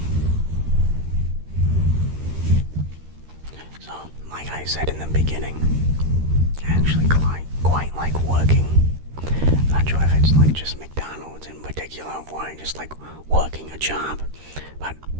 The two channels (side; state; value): left; late; 13 ms